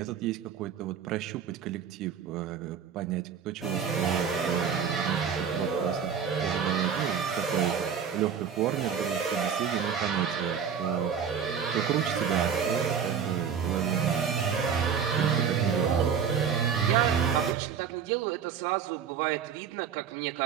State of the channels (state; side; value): quieter; left; 7.3 dB